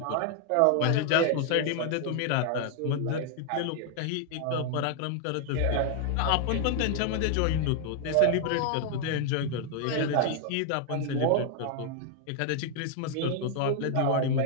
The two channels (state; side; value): different; both; correlation 0.00